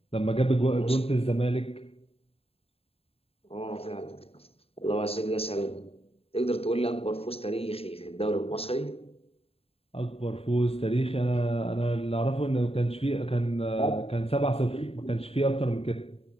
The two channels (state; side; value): late; right; 0.28 ms